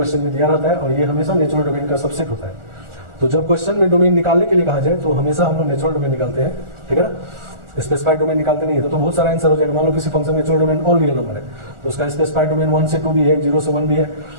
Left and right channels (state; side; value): late; left; 1.4 ms